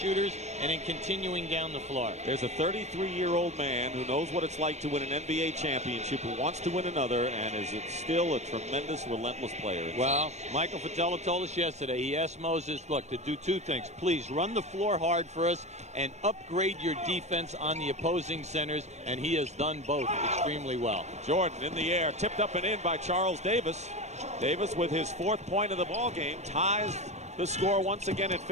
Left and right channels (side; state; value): left; late; 0.33 ms